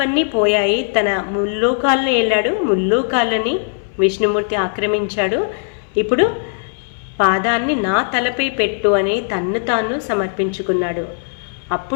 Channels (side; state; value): right; silent; 62 dB below the other